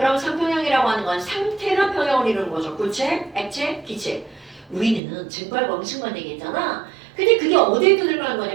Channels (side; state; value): left; drops out; at 5.0 s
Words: 상평형이라고 하는 건 상태가 평형을 이루는 거죠. 구체, 액체, 기체. 우리는 증발과 응축만 얘기했잖아. 근데 그게 어디에 들어가는